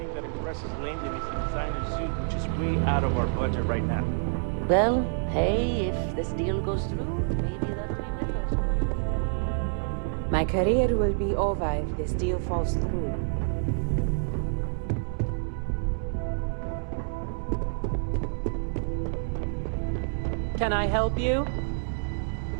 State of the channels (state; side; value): silent; left; digital silence